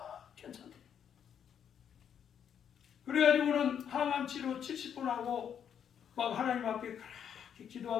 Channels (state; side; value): quieter; right; 8.4 dB